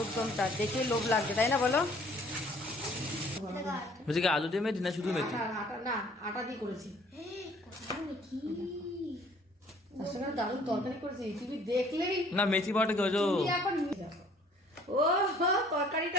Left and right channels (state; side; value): normal; both; correlation 0.56